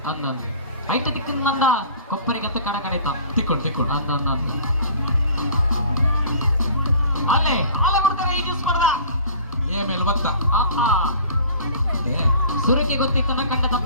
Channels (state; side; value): inverted; both; correlation -0.47